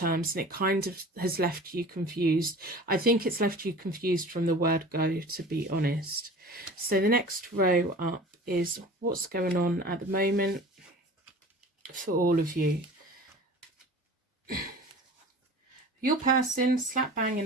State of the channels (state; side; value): normal; both; correlation 0.41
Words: and it kind of has left you confused. I think it's left you confused from the word go, to be honest. So the next row up is what's going on at the moment for all of you. Your person, slap bang in